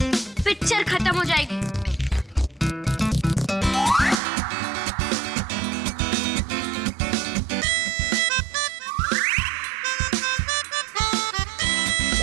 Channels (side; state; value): left; drops out; at 4.2 s